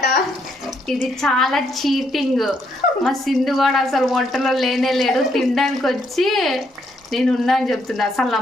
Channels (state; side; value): normal; both; correlation 0.74